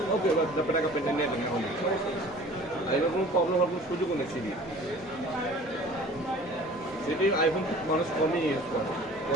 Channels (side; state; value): both; normal; correlation 0.46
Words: ওকে টাকা পেতে নেবেন এখন এরকম কোনো প্রবলেম হওয়ার কোনো সুযোগও নেই সিবি সেটি আইফোন মানুষ কমই ইউজ করে